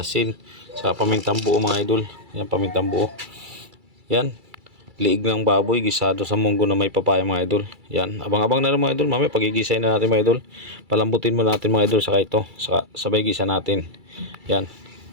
sa pamintang buo mga idol. Yan, pamintang buo. Yan, liig ng baboy gisado sa munggo na may papaya mga idol. Yan, abang-abang na lang mga idol. Mamaya pagigisay na natin mga idol. Palambutin mo natin mga idol, saka ito, saka sabay gisa natin. Yan,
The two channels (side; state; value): left; late; 2.3 ms